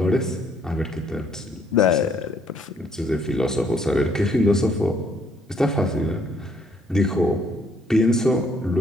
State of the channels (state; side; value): normal; both; correlation 0.66